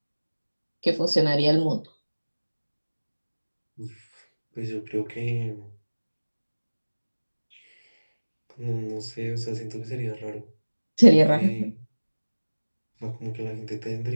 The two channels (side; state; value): both; inverted; correlation -1.00